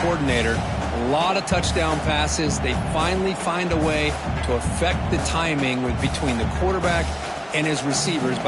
coordinator. A lot of touchdown passes. They finally find a way to affect the timing between the quarterback and his receivers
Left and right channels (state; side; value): identical; both; correlation 1.00